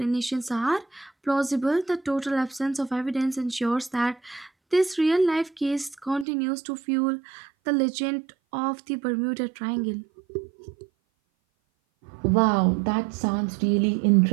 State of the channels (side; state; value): left; drops out; at 6.2 s